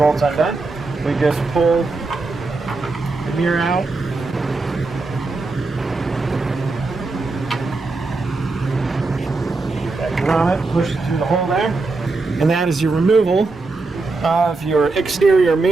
undone. We just pull the mirror out. That grommet, push it through the hole there. And that is your removal of your exterior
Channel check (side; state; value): left; quieter; 3.6 dB